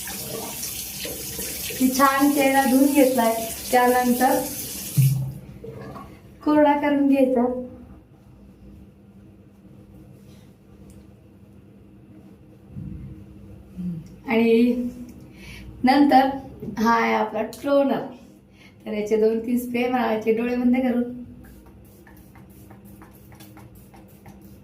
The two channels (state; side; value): identical; both; correlation 1.00